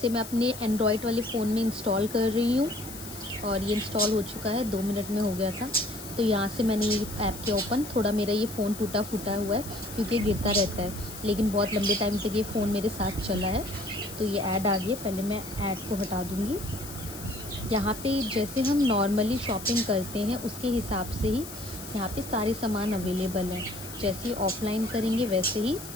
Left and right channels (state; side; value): noise; left; hiss, 13 dB below the sound